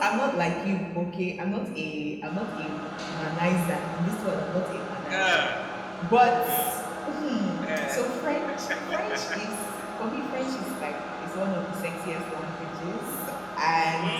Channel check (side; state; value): both; identical; correlation 1.00